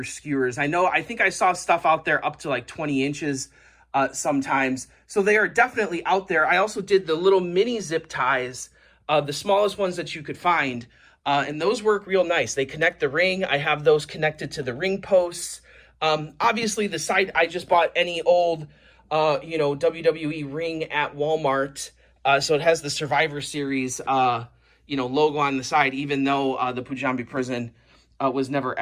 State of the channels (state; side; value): identical; both; correlation 1.00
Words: skewers. I think I saw stuff out there up to like 20 inches sometimes. So they are definitely out there. I also did the little mini zip ties, the smallest ones that you could find. And those work real nice. They connect the ring. I have those connected to the ring posts. Obviously the side, I just bought any old, WWE ring at Walmart. So it has the Survivor Series, logo on the side, even though the Punjabi Prison was never